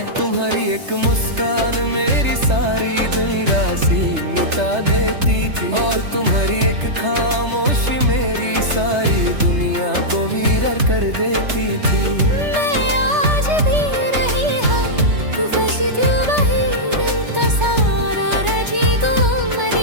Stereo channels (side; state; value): left; late; 3.3 ms